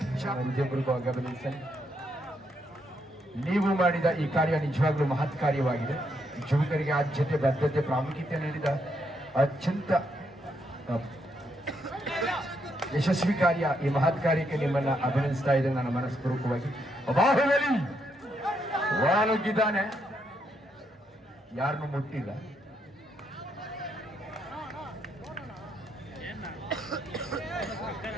ಗಮನಿಸಿ. ನೀವು ಮಾಡಿದ ಈ ಕಾರ್ಯ ನಿಜವಾಗ್ಲೂ ಮಹತ್ ಕಾರ್ಯವಾಗಿದೆ. ಯುವಕರಿಗೆ ಆದ್ಯತೆ ಬದ್ಧತೆ ಪ್ರಾಮುಖ್ಯತೆ ನೀಡಿದ ಅತ್ಯಂತ ಯಶಸ್ವಿ ಕಾರ್ಯ. ಈ ಮಹತ್ ಕಾರ್ಯಕ್ಕೆ ನಿಮ್ಮನ್ನ ಅಭಿನಂದಿಸ್ತಾ ಇದ್ದೇನೆ ನನ್ನ ಮನಸ್ಪೂರ್ವಕವಾಗಿ. ಬಾಹುಬಲಿ ಒಳನುಗ್ಗಿದ್ದಾನೆ, ಯಾರನ್ನು ಮುಟ್ಟಿಲ್ಲ.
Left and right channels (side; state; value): both; normal; correlation 0.77